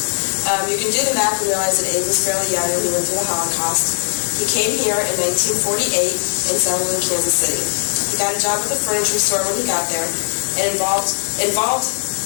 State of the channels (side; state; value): right; silent; digital silence